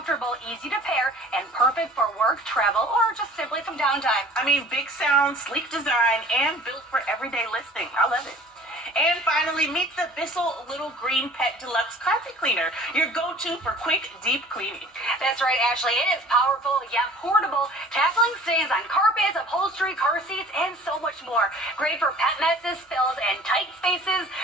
easy to pair, and perfect for work, travel, or just simply some downtime. I mean, big sound, sleek design, and built for everyday listening. I love it. And finally, meet the Bissell Little Green Pet Deluxe Carpet Cleaner, your go-to for quick, deep cleaning. That's right, Ashley. It is powerful yet portable, tackling stains on carpets, upholstery, car seats, and so much more. Great for pet messes, spills, and tight spaces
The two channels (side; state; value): both; normal; correlation 0.47